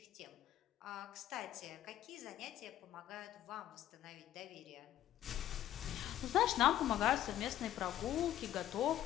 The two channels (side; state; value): right; quieter; 12.4 dB